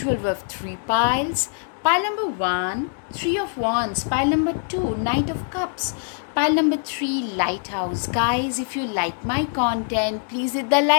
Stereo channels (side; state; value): right; silent; digital silence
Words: we have three piles. Pile number one, Three of Wands. Pile number two, Knight of Cups. Pile number three, Lighthouse. Guys, if you like my content, please hit the